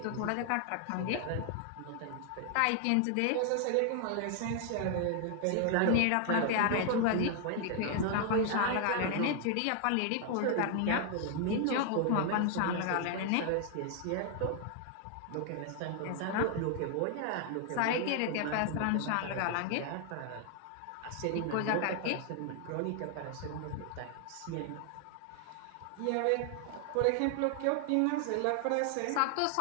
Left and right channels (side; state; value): both; different; correlation 0.00